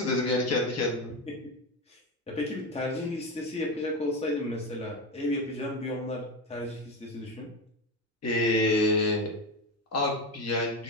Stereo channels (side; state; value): both; normal; correlation 0.17